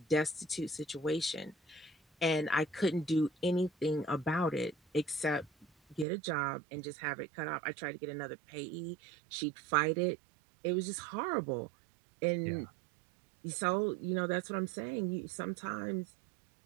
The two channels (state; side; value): drops out; left; at 6.1 s